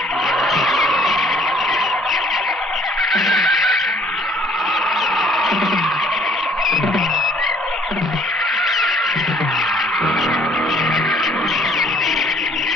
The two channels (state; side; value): normal; both; correlation 0.58